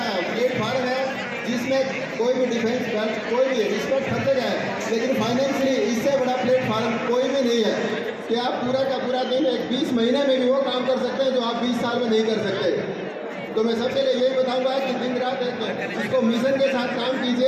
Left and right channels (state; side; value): identical; both; correlation 1.00